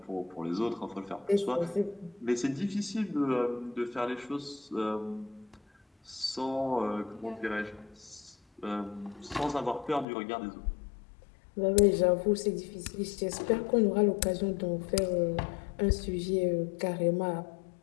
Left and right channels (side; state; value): right; drops out; at 10.1 s